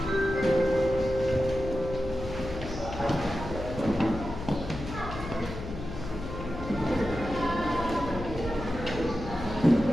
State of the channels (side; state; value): left; noise; hum, 9 dB below the sound